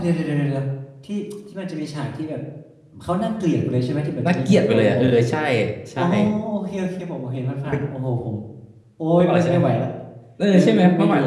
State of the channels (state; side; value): identical; both; correlation 1.00